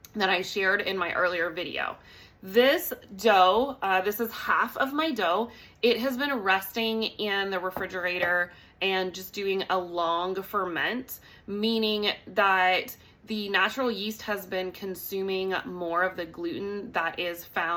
that I shared in my earlier video. This dough, this is half of my dough. It has been resting in the refrigerator and just doing a long ferment, meaning that the natural yeast has been consuming more of the gluten that is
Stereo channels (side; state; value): both; identical; correlation 1.00